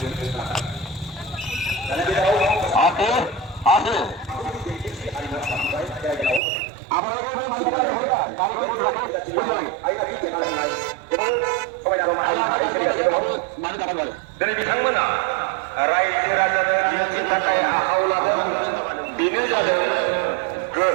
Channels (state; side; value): drops out; left; at 6.4 s